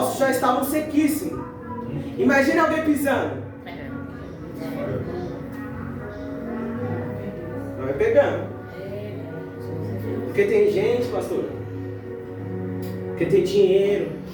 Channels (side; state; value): both; identical; correlation 1.00